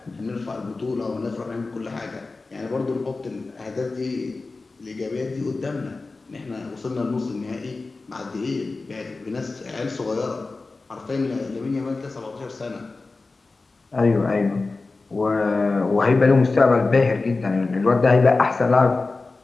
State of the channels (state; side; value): quieter; right; 3.7 dB